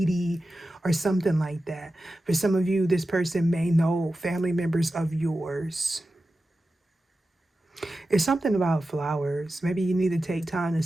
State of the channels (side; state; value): both; normal; correlation 0.93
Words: or something like that. For some of you, this person may know family members of yours. It's something about flowers. Maybe you need to take time